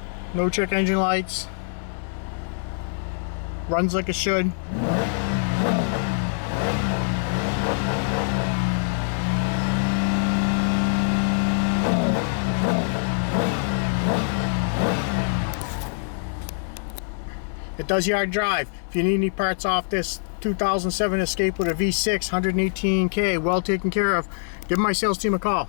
No check engine lights. Runs like it should. It does yard drive. If you need any parts off this 2007 Escape with a V6, 118K, well taken care of, give my sales team a call.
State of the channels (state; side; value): silent; right; 63 dB below the other